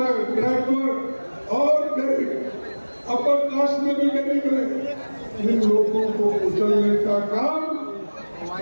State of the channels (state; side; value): inverted; both; correlation -1.00